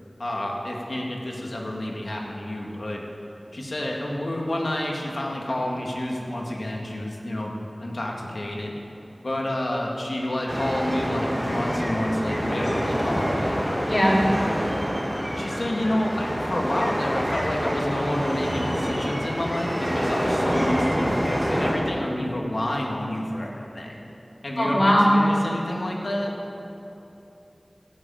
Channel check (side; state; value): both; normal; correlation 0.98